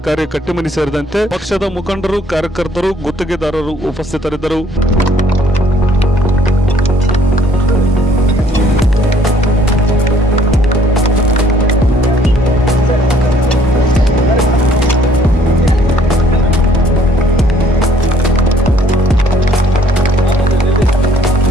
ಕಟ್ಟಿಮನಿ ಸೇರಿದಂತೆ ಪಕ್ಷದ ಮುಖಂಡರು, ಕಾರ್ಯಕರ್ತರು, ಗುತ್ತಿಗೆದಾರರು ಉಪಸ್ಥಿತರಿದ್ದರು.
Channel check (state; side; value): normal; both; correlation 0.62